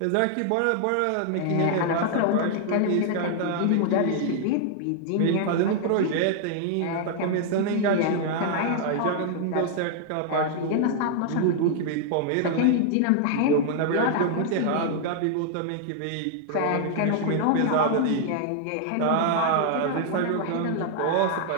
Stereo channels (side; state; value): both; different; correlation 0.00